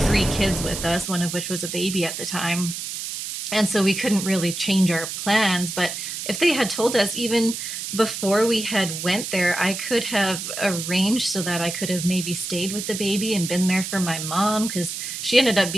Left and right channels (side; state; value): right; noise; hiss, 6 dB below the sound